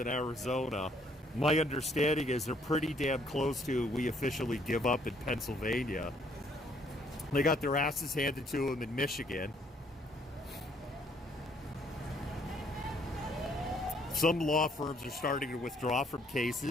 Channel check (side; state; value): both; normal; correlation 0.66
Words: Arizona. My understanding is they're pretty damn close to we officially give up in Pennsylvania. They got their asses handed to them in Michigan. Some law firms are starting to withdraw from